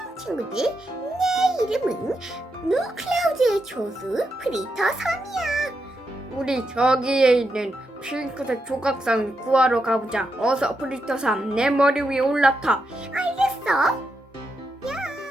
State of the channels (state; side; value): normal; both; correlation 0.84